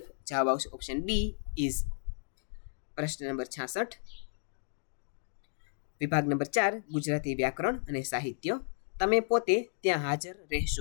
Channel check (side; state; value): right; silent; digital silence